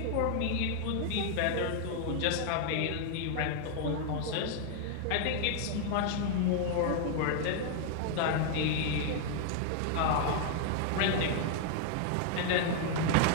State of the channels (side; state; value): both; different; correlation 0.00